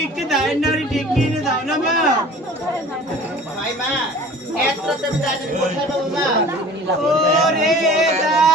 একটু দায়ের নাড়ি ডেকে এনে দাও না মা। ভাই মা এত রাতে আমি ডাকলে কোথায় পাবো মা? ওরে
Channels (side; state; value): both; normal; correlation 0.44